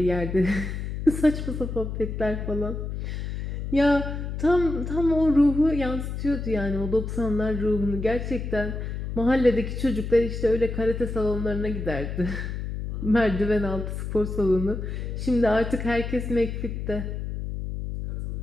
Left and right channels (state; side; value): noise; left; hum, 5 dB below the sound